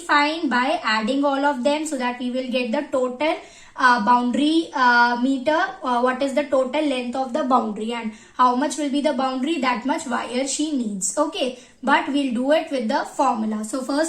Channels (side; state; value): both; identical; correlation 1.00